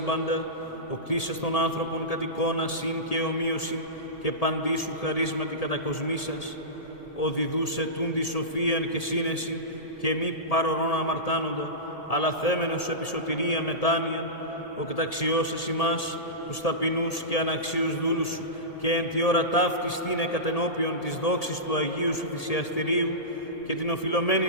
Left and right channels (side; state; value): right; late; 1.8 ms